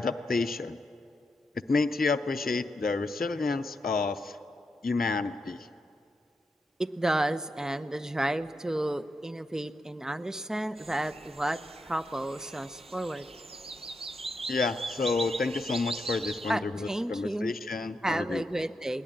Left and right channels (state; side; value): normal; both; correlation 0.84